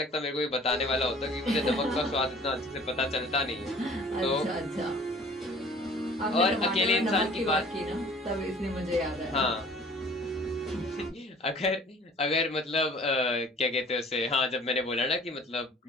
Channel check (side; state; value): both; normal; correlation 0.50